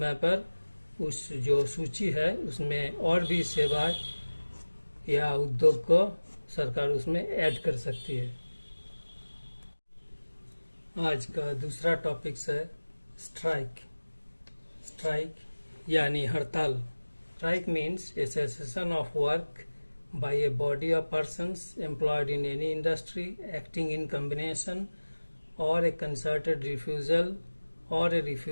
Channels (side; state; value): both; inverted; correlation -1.00